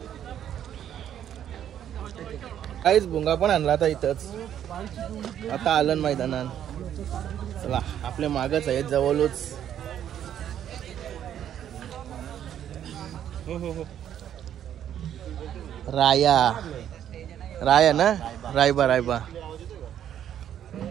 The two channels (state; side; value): quieter; left; 10.2 dB